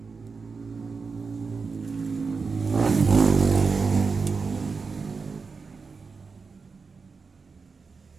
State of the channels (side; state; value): left; quieter; 4.8 dB